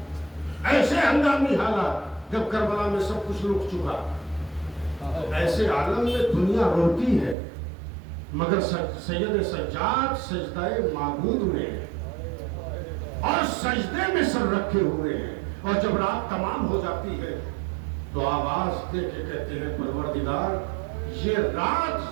حالات جب کربلا میں سب کچھ رک چکا، ایسے عالم میں دنیا روتی ہے، مگر سید سجاد سجدہ معبود میں ہے اور سجدے میں سر رکھے ہوئے ہیں، اور جب رات تمام ہو جاتی ہے تو آواز دے کے کہتے ہیں پروردگار یہ رات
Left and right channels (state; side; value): drops out; left; at 7.4 s